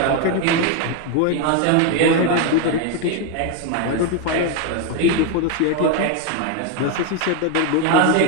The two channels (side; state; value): both; different; correlation 0.01